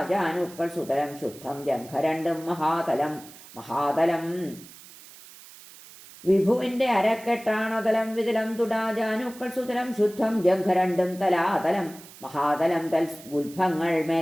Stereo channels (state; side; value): noise; right; hiss, 19 dB below the sound